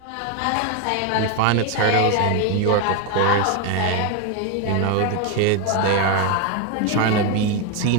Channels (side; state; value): both; different; correlation 0.01